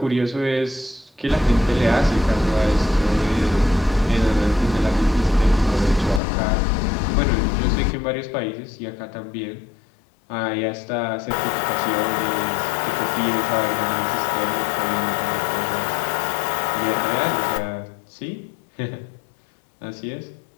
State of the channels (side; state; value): right; drops out; at 6.2 s